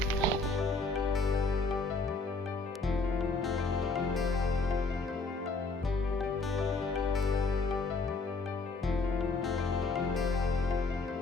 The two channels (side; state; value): right; quieter; 3.6 dB